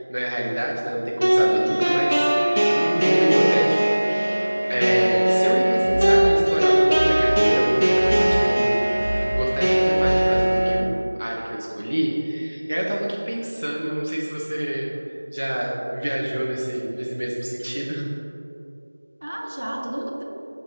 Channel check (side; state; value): both; inverted; correlation -1.00